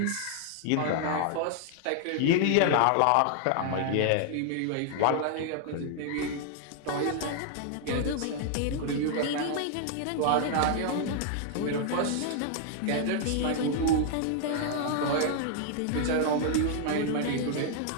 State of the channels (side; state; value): both; different; correlation 0.00